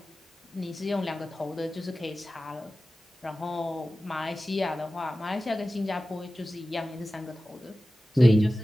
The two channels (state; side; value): normal; both; correlation 0.96